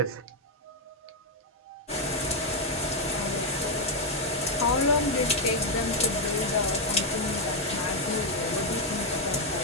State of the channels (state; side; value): normal; both; correlation 0.01